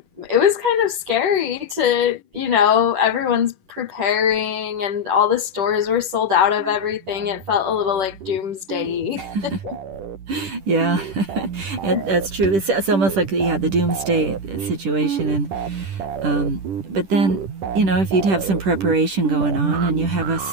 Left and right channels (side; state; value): left; late; 10 ms